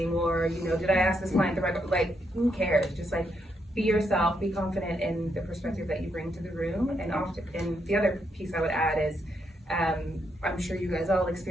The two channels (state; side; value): normal; both; correlation 0.78